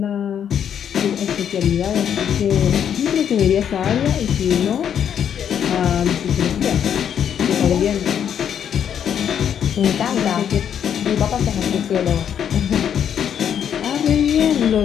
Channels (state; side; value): quieter; right; 8.8 dB